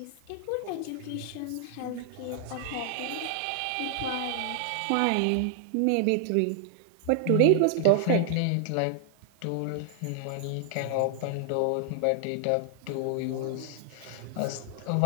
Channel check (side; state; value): both; different; correlation 0.00